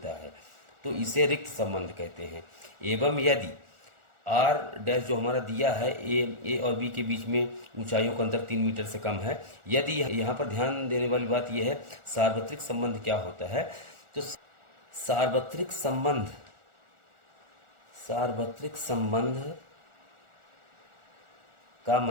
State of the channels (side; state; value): left; late; 1.4 ms